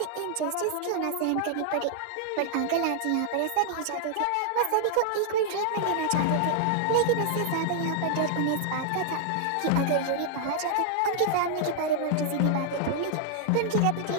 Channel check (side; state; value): both; different; correlation 0.00